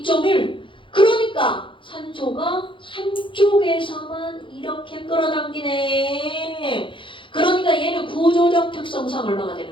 그러니까 산소가 한쪽에서만 이렇게 끌어당기네. 그러니까 얘는 구조적 특성상 얼마가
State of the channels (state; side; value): late; right; 0.24 ms